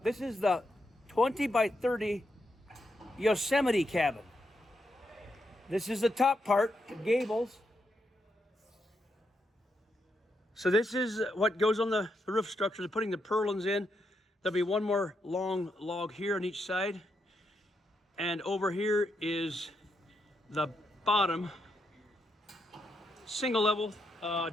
This is the 20 by 30 Yosemite cabin. This is the top part, the gables. So this is what goes on the roof structure. They're putting the purlins in. There'll be one more long log here on each side. And over here is the bottom, single level.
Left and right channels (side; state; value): both; normal; correlation 0.82